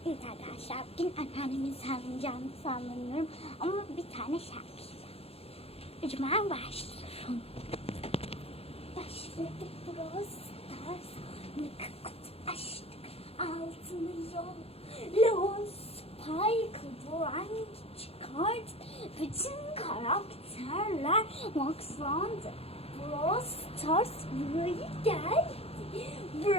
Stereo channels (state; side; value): late; right; 0.29 ms